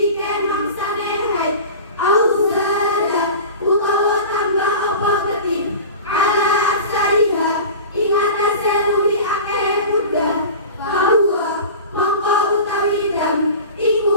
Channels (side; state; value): both; inverted; correlation -0.35